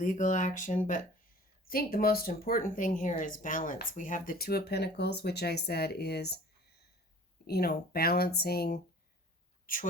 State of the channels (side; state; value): both; normal; correlation 0.47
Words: action, but I think the most important thing here is balance. We have the Two of Pentacles, which I said is, balancing